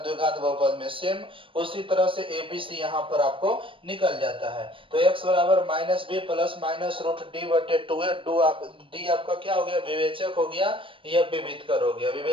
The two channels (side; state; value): left; late; 0.25 ms